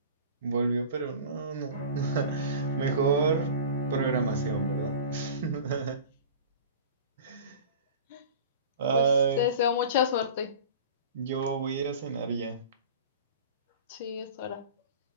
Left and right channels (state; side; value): inverted; both; correlation -0.38